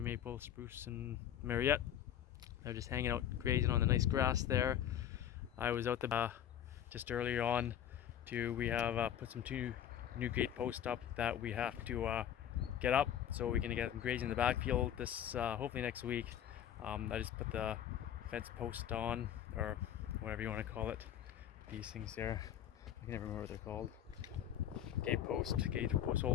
spruce, and Mariette. They're just hanging out grazing on the nice grass there. I was out the just earlier on we have put some two new gate posts up that we have to get up so we can get them grazing in the backfield this hopefully next week. I just put the fence post on, or whatever you want to call it, these things there. I can never remember what they're called. Gate post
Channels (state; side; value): quieter; right; 10.3 dB